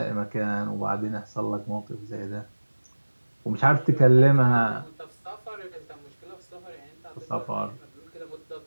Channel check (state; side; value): inverted; both; correlation -1.00